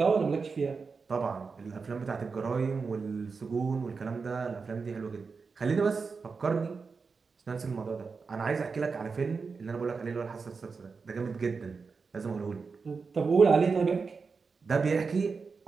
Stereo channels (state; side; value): quieter; left; 4.9 dB